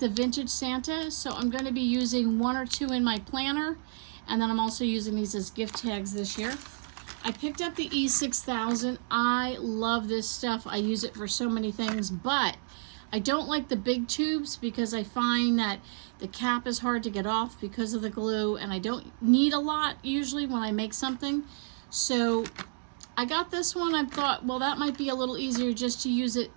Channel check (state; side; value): silent; left; digital silence